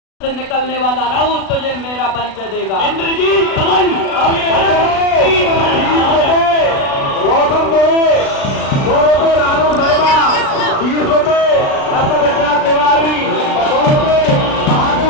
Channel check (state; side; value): late; right; 36 ms